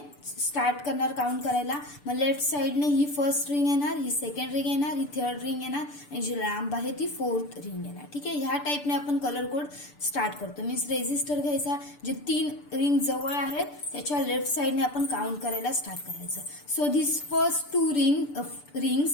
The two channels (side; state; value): right; late; 6.8 ms